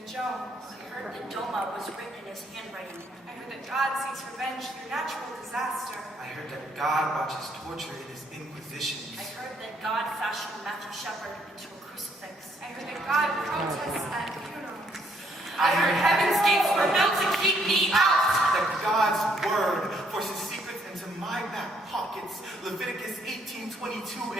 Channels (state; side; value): normal; both; correlation 0.69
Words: Jones. I heard that Doma was written in his handwriting. I heard that God seeks revenge through natural disaster. I heard that God watches torture in his inquisitions. I heard that God fashioned Matthew Shepard into a crucifix. I heard that God protests at funerals. I heard heaven's gates were built to keep me out. That God's word forces secrets into my back pockets. Leviticus 18:22,